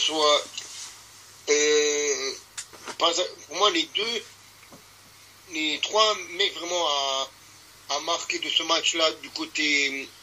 pour moi les 3 mecs vraiment à marquer de ce match-là du côté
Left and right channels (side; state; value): both; identical; correlation 1.00